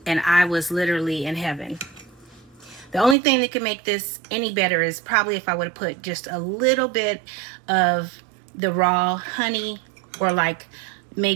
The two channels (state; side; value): drops out; left; at 3.2 s